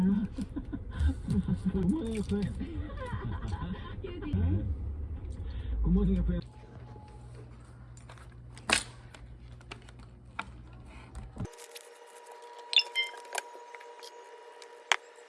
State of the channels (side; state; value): both; identical; correlation 1.00